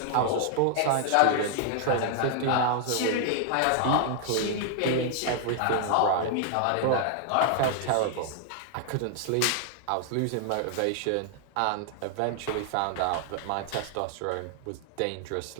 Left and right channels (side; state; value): both; different; correlation 0.00